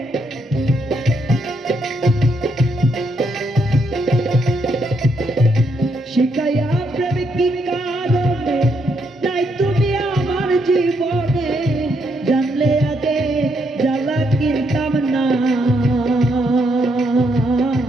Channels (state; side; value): normal; both; correlation 0.76